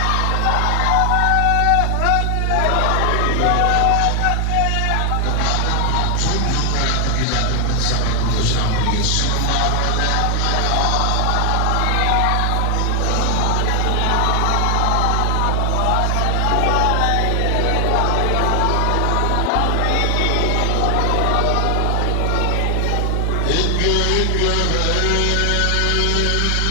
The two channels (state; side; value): different; both; correlation 0.00